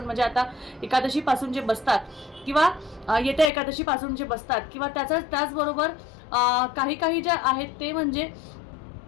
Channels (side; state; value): right; drops out; at 3.5 s